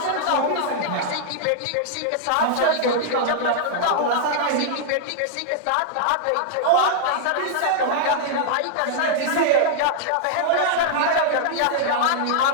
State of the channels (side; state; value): both; different; correlation -0.01